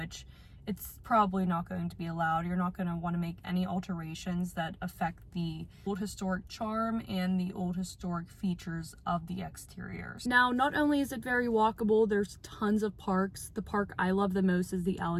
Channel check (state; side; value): identical; both; correlation 1.00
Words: it's probably not going to be allowed. You're not going to want to make any alterations that affect the old historic charm and the old historic features of the exteriors. Now, not only is it very walkable, there's tons of parks. The park I love the most is the